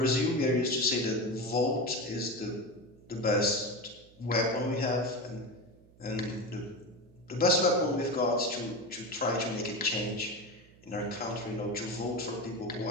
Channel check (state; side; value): noise; right; hum, 26 dB below the sound